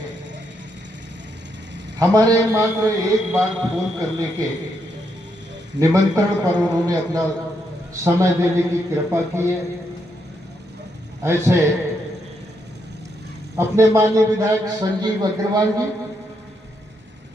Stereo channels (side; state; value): both; normal; correlation 0.79